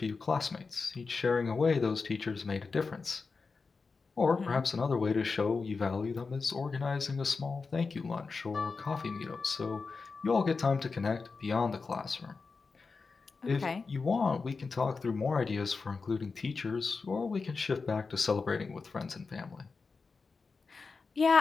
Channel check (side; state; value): right; quieter; 4.5 dB